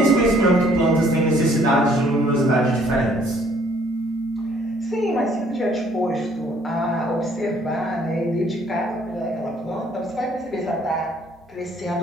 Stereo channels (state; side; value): normal; both; correlation 0.62